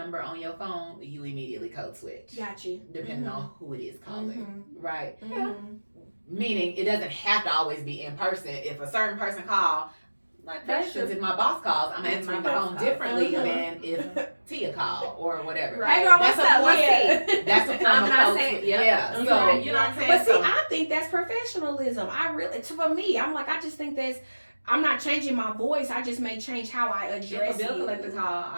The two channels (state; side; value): inverted; both; correlation -1.00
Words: on your phone, you immediately code switch. Got you. Depending on who it is calling, right? Yeah. Meaning it doesn't have to always be in person. If a certain person call, like for instance, if my boss calls, I'm answering the phone differently than if Teaa call or whatever. Right. Hey girl, That's what's a up? form- What's That's a form I'm of not code saying- switch. yep. Yeah. So Right. you know what I'm saying? But see, So- I think that's professionalism. I really, for me, I'm like, I just think that's. I'm not changing my voice. I just may change how I if address a bill you. collector call,